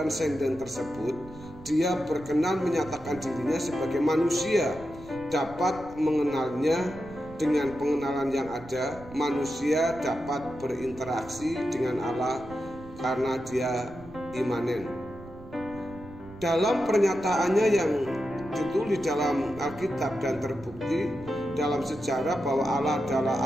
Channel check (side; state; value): right; noise; rumble, 17 dB below the sound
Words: tersebut, dia berkenan menyatakan dirinya sebagai manusia, dapat mengenalnya. Dengan pengenalan yang ada, manusia dapat berinteraksi dengan Allah karena dia imanen. Dalam pernyataannya yang ditulis dalam Alkitab dan terbukti dalam sejarah bahwa Allah adalah